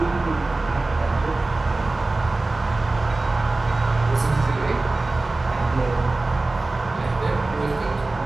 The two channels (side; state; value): left; quieter; 3.2 dB